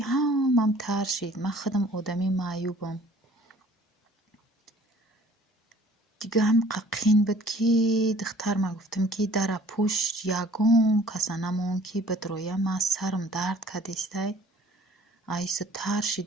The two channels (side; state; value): both; normal; correlation 0.53